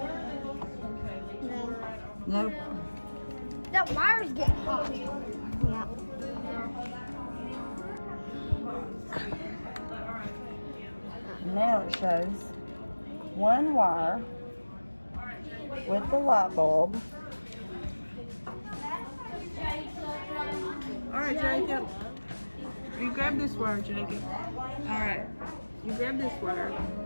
No. Nope. That wire's getting hot. Yeah. Now it shows one wire with the light bulb. Alright, Jacob. You grab this wire, Jacob. Alright. You grab this wire.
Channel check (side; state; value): both; inverted; correlation -1.00